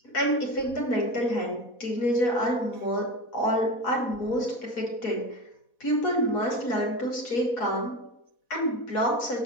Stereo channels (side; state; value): right; late; 4.1 ms